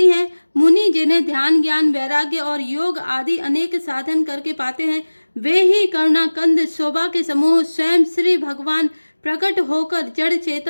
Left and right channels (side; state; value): both; inverted; correlation -1.00